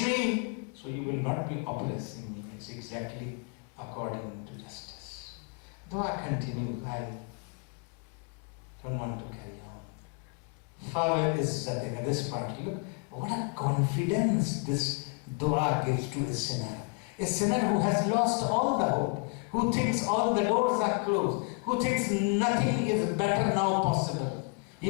me, so you will not be oppressing me. It's exactly according to justice. Dua continues. I don't want to carry on. Fawad is this part. Look, what a confidence this dua gives to a sinner. A sinner who has lost all the hope, who thinks all the doors are closed, who thinks nothing is better now possible.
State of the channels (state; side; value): quieter; right; 35.0 dB